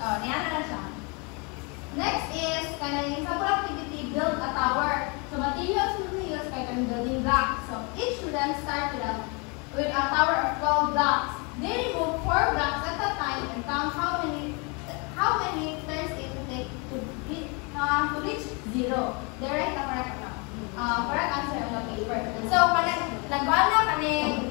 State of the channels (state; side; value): quieter; right; 31.8 dB